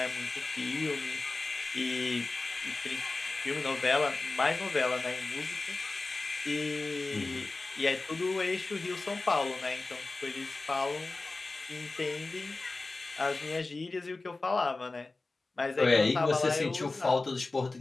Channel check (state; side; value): quieter; right; 3.4 dB